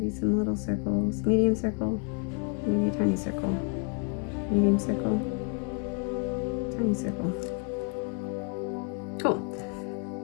some little circles, medium circle, maybe a tiny circle, medium circle, tiny circle. Cool.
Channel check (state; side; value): quieter; right; 37.7 dB